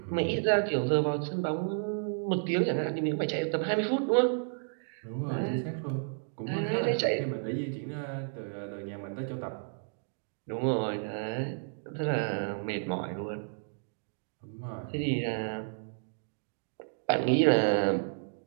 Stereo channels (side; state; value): left; silent; digital silence